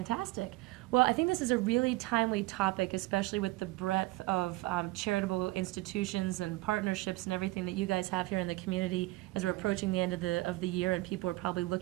Well, I think this is a really timely topic, especially with the breadth of charitable institutions and partnerships and everything that you guys have here in the community as we're approaching the end of the year, and people are probably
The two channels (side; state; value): left; quieter; 19.9 dB